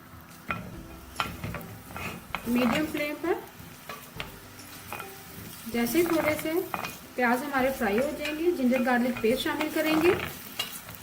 मीडियम फ्लेम पर। जैसे थोड़े से प्याज हमारे फ्राई हो जाएंगे, जिंजर गार्लिक पेस्ट शामिल करेंगे।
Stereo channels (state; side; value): identical; both; correlation 1.00